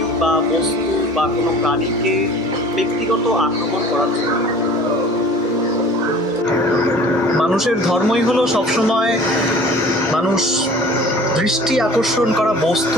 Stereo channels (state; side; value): normal; both; correlation 0.46